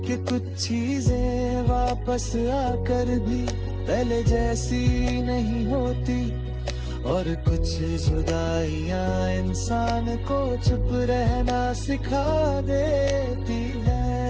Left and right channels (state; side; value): identical; both; correlation 1.00